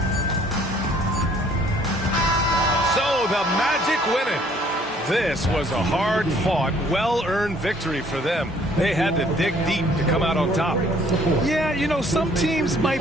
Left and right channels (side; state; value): both; normal; correlation 0.60